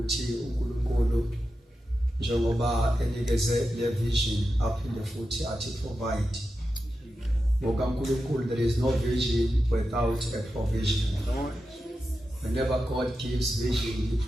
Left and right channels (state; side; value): normal; both; correlation 0.90